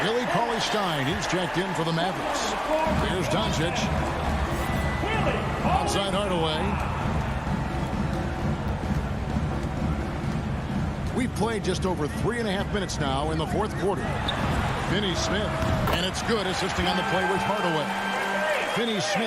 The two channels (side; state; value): both; identical; correlation 1.00